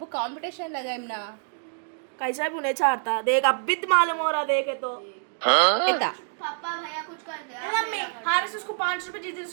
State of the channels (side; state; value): left; silent; 61 dB below the other